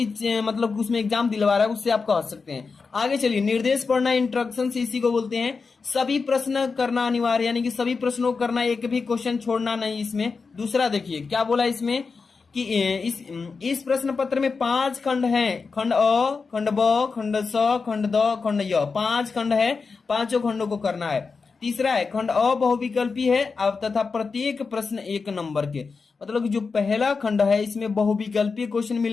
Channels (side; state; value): right; quieter; 4.8 dB